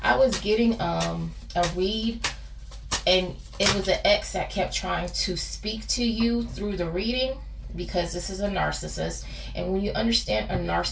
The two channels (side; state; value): both; identical; correlation 1.00